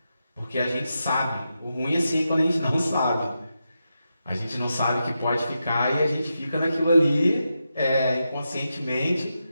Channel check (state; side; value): inverted; both; correlation -0.88